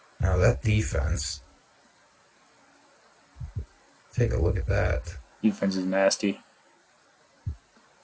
Now that defense, take a look at that. Defense is nasty.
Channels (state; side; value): identical; both; correlation 1.00